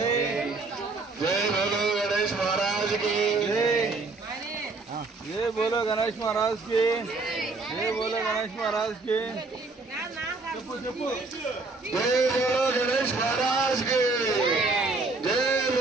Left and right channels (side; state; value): left; quieter; 3.6 dB